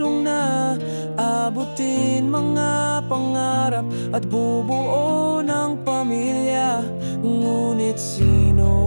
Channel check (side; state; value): both; inverted; correlation -1.00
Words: na abutin mga pangarap at bubuo ng pamilya. Ngunit